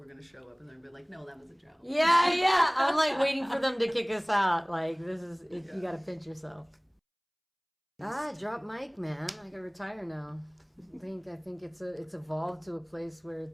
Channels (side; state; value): both; identical; correlation 1.00